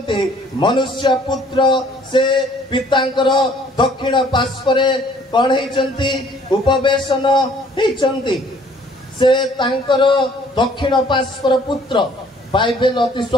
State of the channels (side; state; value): both; normal; correlation 0.58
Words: ମନୁଷ୍ୟ ପୁତ୍ର ସେ ପିତାଙ୍କର ଦକ୍ଷିଣ ପାର୍ଶ୍ୱରେ କଣ ହେଇଛନ୍ତି? ଉପବେଶନ ହେଇଛନ୍ତି। ସେ ତାଙ୍କର ଦକ୍ଷିଣ ପାର୍ଶ୍ୱର ପୁତ୍ର। ବାଇବେଲ ଅତି